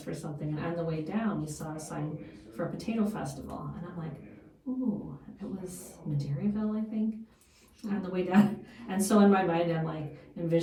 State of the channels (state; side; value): identical; both; correlation 1.00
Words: for something, and on the way down we saw a sign for a potato festival, and I'm like, ooh, it was Madeiraville, I think, on the way down. And so in my mind I'm like